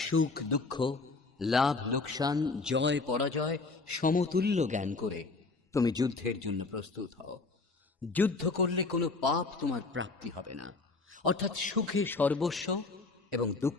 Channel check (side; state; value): right; quieter; 3.8 dB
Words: সুখ দুঃখ, লাভ লোকসান, জয় পরাজয় সমতুল্য জ্ঞান করে তুমি যুদ্ধের জন্য প্রস্তুত হও। যুদ্ধ করলে কোনো পাপ তোমার প্রাপ্তি হবে না, অর্থাৎ সুখে সর্বস্ব এবং